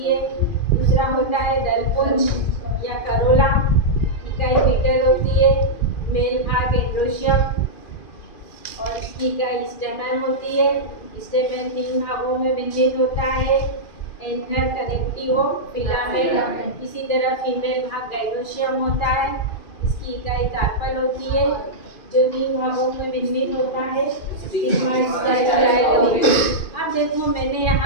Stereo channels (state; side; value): late; right; 2.4 ms